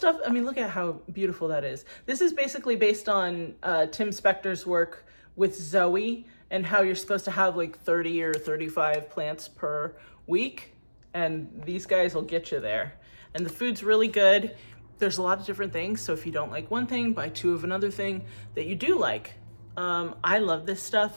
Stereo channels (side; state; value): both; inverted; correlation -1.00